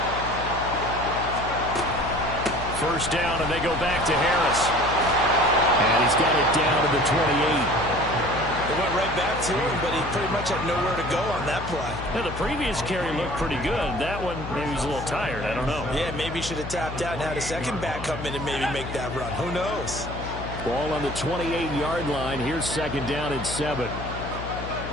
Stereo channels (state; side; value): noise; left; hum, 9 dB below the sound